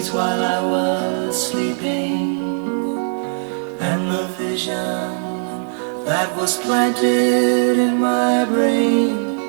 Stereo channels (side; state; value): left; silent; 65 dB below the other